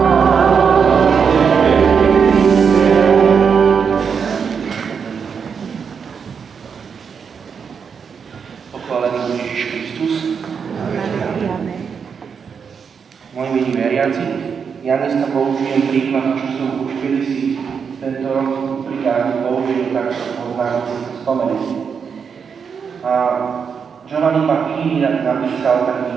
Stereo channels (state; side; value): quieter; left; 6.4 dB